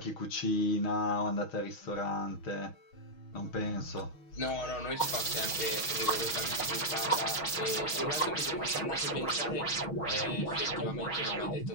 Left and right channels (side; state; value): right; late; 6.3 ms